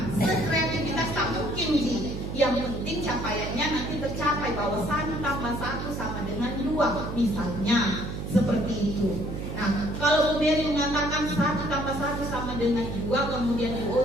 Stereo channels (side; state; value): right; noise; hum, 5 dB below the sound